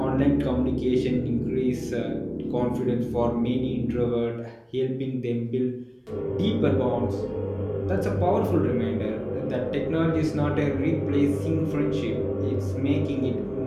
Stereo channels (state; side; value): identical; both; correlation 1.00